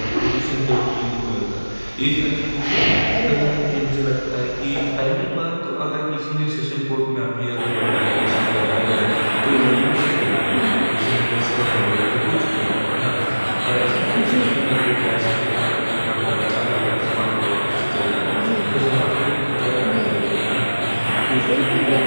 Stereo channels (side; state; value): both; inverted; correlation -1.00